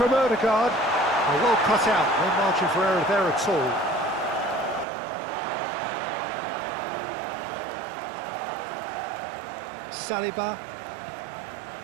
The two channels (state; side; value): drops out; left; at 4.9 s